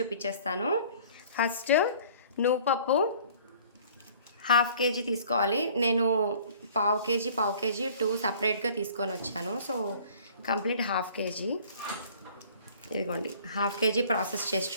ఫస్ట్ నువ్వు పప్పు 1/2 kg తీసుకోవాలి. నేను పావు కేజీ 2 సపరేట్గా తీసుకొని వచ్చాను. So complete 1/2 kg. ఇదిగోండి 1/2 kg ప్రాసెస్ చేసి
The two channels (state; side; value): inverted; both; correlation -0.52